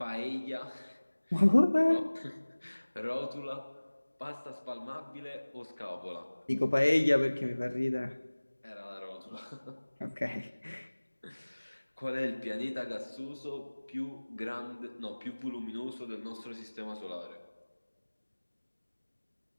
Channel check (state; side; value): inverted; both; correlation -1.00